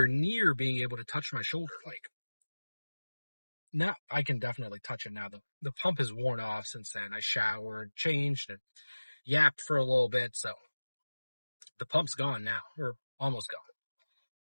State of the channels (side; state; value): both; inverted; correlation -1.00